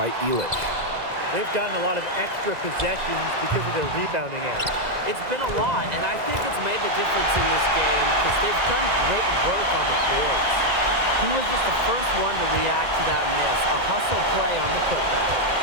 Illich. They've gotten a lot of extra possessions because of their rebounding edge. It's been a lot, and I think it's made the difference in this game because they've done great work on the boards. He was just the first one to react to that miss, a hustle play on the putback.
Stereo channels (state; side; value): late; left; 2.0 ms